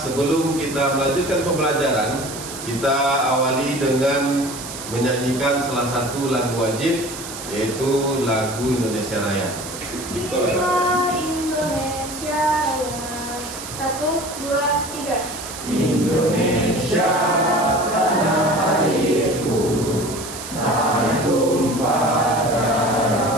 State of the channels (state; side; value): noise; right; hiss, 10 dB below the sound